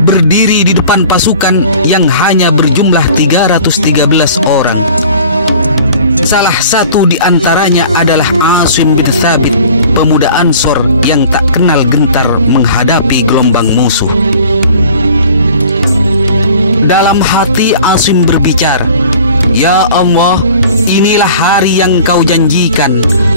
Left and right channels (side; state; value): both; inverted; correlation -0.47